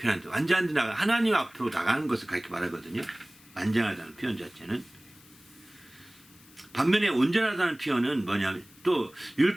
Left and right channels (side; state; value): left; noise; hiss, 25 dB below the sound